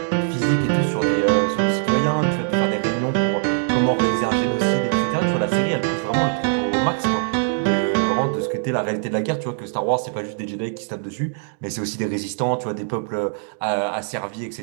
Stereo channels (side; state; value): left; silent; digital silence